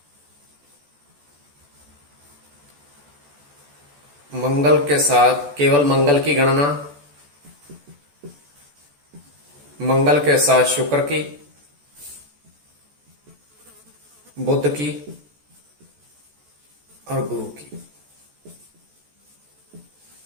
मंगल के साथ केवल मंगल की गणना, मंगल के साथ शुक्र की, बुध की और गुरु की।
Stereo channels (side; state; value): left; late; 14 ms